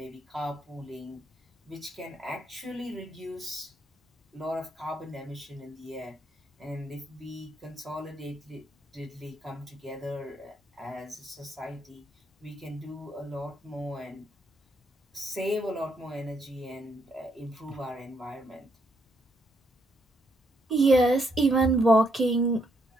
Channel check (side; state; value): both; normal; correlation 0.75